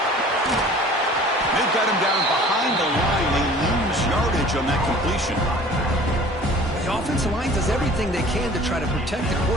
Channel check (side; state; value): both; normal; correlation 0.47